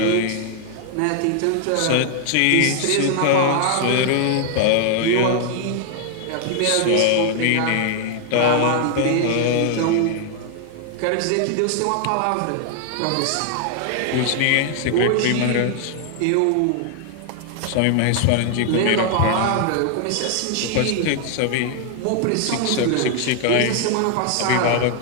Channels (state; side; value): different; both; correlation 0.00